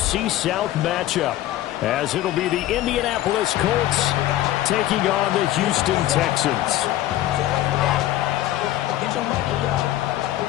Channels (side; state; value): right; quieter; 14.3 dB